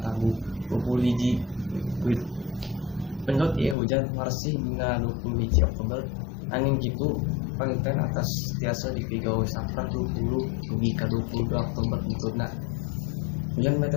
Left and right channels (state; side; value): drops out; right; at 3.8 s